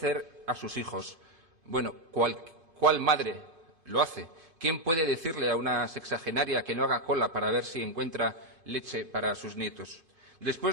a sus hijos. Bueno, ¿cuál madre lo hace? ¿Quién puede decirle a una sexagenaria que no haga cola para ver si encuentra leche para sus nietos?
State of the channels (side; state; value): left; late; 2.5 ms